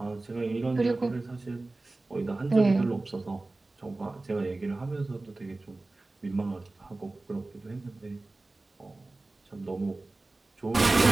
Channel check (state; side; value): quieter; left; 3.1 dB